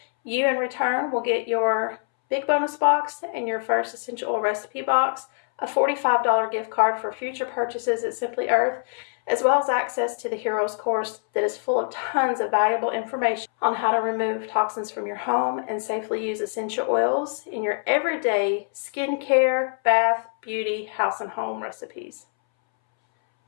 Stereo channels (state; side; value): silent; right; 61 dB below the other